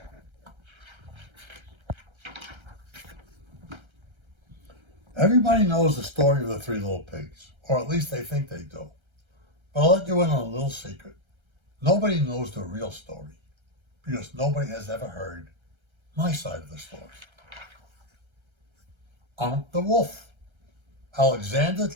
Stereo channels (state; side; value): late; left; 1.3 ms